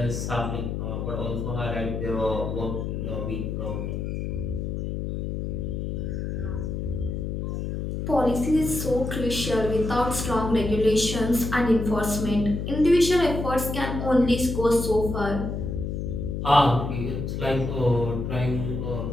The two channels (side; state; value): left; noise; hum, 3 dB below the sound